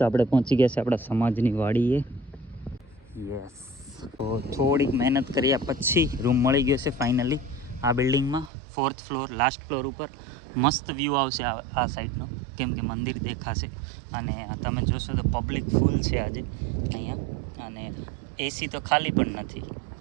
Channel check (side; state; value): left; drops out; at 8.5 s